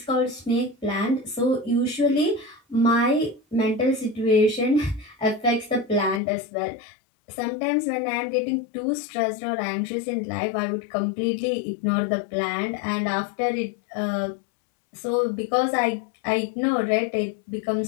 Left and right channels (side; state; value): right; drops out; at 6.2 s